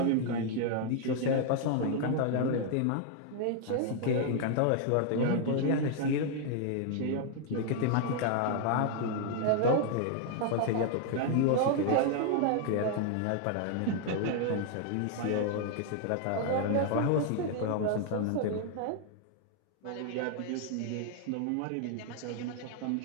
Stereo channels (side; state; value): both; different; correlation 0.00